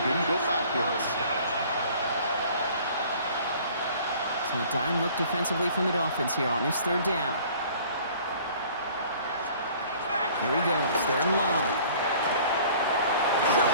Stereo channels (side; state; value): both; inverted; correlation -0.51